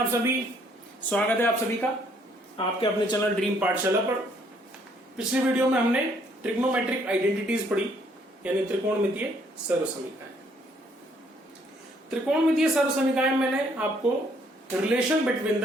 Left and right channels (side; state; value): both; normal; correlation 0.66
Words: सभी। स्वागत है आप सभी का आपके अपने चैनल ड्रीम पाठशाला पर। पिछली वीडियो में हमने ट्रिग्नोमेट्रिक आइडेंटिटीज पढ़ी, यानी त्रिकोणमितीय सर्वसमीकरण। त्रिकोणमितीय सर्वसमीकरण मैंने आपको relation between